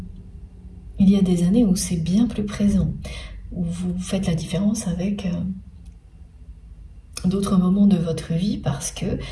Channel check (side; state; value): both; identical; correlation 1.00